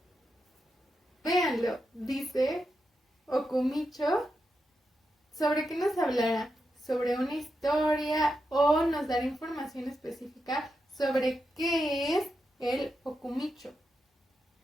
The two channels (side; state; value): both; normal; correlation 0.87